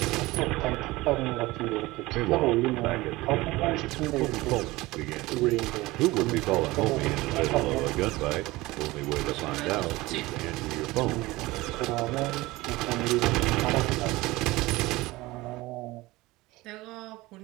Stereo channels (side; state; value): left; quieter; 20.1 dB